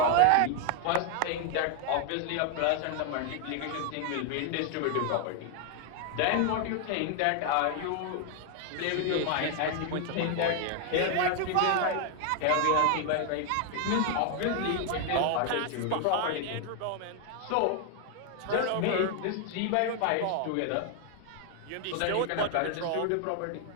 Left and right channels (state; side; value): different; both; correlation 0.00